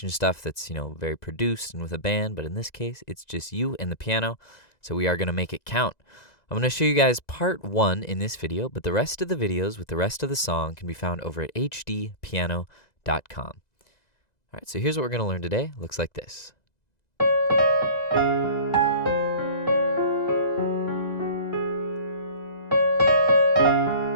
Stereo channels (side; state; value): right; late; 2.0 ms